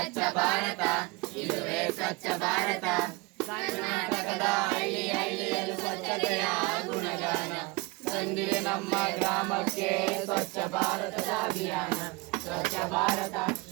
ಭಾರತ ಇದುವೇ ಸ್ವಚ್ಛ ಭಾರತ. ಕರ್ನಾಟಕದ ಹಳ್ಳಿ ಹಳ್ಳಿಯಲ್ಲೂ ಸ್ವಚ್ಛತೆಯ ಗುಣಗಾನ ತಂದಿದೆ ನಮ್ಮ ಗ್ರಾಮಕ್ಕೆ ಸ್ವಚ್ಛ ಭಾರತದ ಅಭಿಯಾನ. ಸ್ವಚ್ಛ ಭಾರತ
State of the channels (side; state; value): left; quieter; 25.2 dB